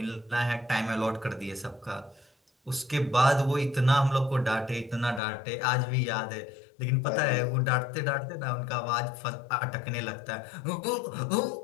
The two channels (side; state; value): right; drops out; at 5.2 s